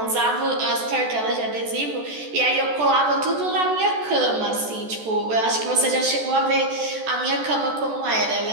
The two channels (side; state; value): left; late; 14 ms